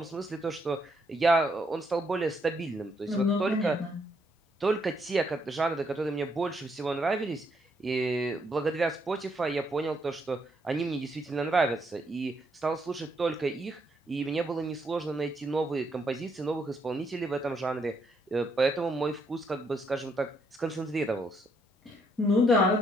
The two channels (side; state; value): both; normal; correlation 0.74